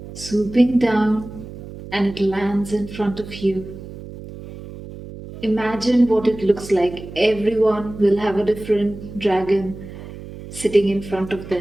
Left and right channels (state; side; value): noise; right; hum, 13 dB below the sound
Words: swooping down, and it lands in front of you. Imagine what it looks like. Everyone will have a different dragon sitting in front of them.